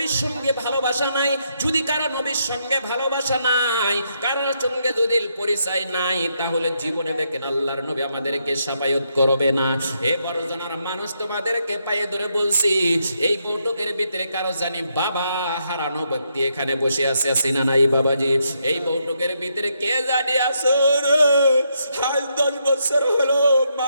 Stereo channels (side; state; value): both; inverted; correlation -0.78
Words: সঙ্গে ভালোবাসা নাই। যদি কারো নবীর সঙ্গে ভালোবাসা নাই, কারোর সঙ্গে যদি পরিচয় নাই, তাহলে জীবনে দেখেন আল্লাহর নবী আমাদেরকে সাফায়াত করবে না। এ বড় জনার মানুষ, তোমাদেরকে পায়ে ধরে বলছি, এই বৈঠকের ভিতরে কারো জানি বাবা হারানো ব্যক্তি এখানে বসে আছে, আছে না নাই বাবাজি? এই বৈঠকের ভিতরে কে জানি আছে রে, আজ 10 বছর হলো